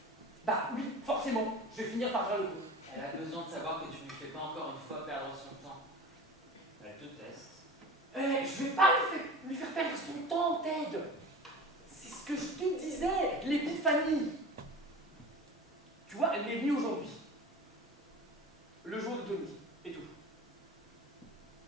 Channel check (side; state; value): both; normal; correlation 0.35